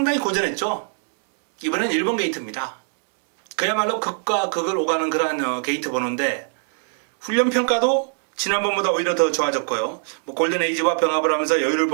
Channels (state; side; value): silent; left; 64 dB below the other